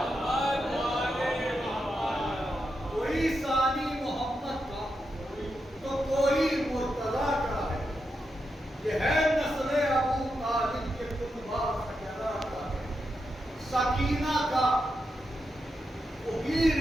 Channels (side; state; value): both; normal; correlation 0.86